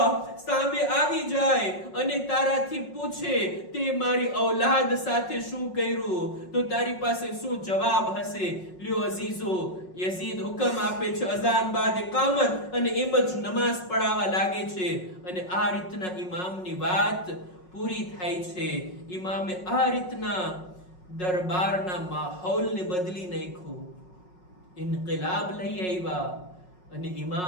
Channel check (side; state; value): right; late; 5.5 ms